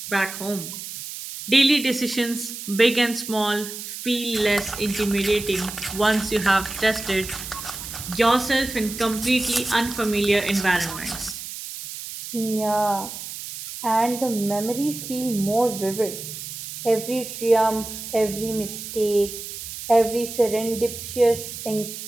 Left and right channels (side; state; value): right; noise; hiss, 9 dB below the sound